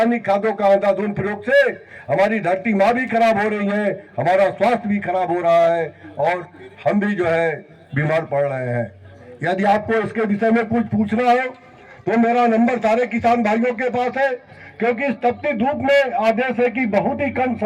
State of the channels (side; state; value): both; identical; correlation 1.00